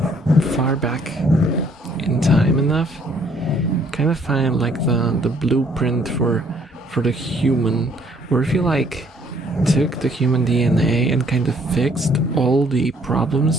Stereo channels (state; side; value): normal; both; correlation 0.63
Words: far back in time enough, you kind of find like the blueprint for the human, where if you like took the human DNA and kind of fixed all the